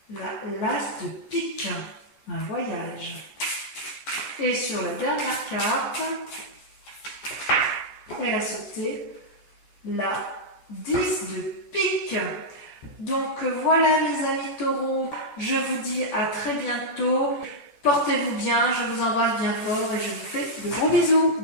L'as de pique, un voyage. Et sur la dernière carte, elle a sauté la 10 de pique. Donc voilà mes amis taureaux, je vous dis à très bientôt. Portez-vous bien, je vous embrasse bien fort et je vous fais de gros bisous.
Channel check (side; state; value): right; late; 14 ms